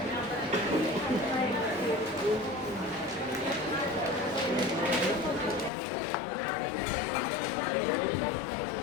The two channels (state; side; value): drops out; right; at 5.7 s